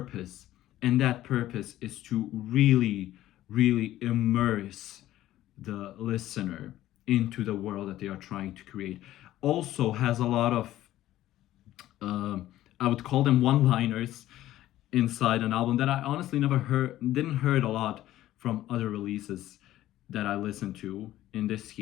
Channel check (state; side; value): quieter; right; 14.2 dB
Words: and that purpose is to really, really immerse the listener into the world that they are trying to create. Also has a lot of, uh, I would call them one-liners inside an album that I honestly never didn't heard a lot from other releases that I listened to in this